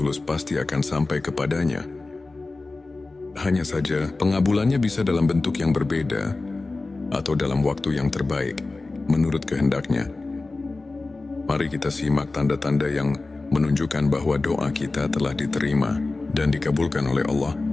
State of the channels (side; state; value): right; quieter; 3.4 dB